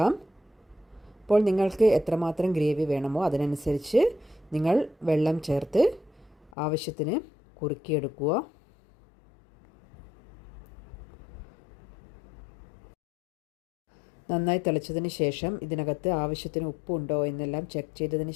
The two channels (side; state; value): right; drops out; at 6.5 s